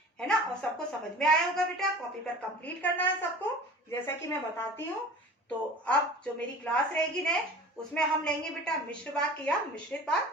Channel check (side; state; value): both; normal; correlation 0.41